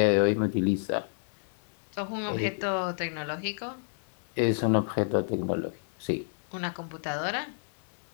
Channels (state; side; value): silent; right; digital silence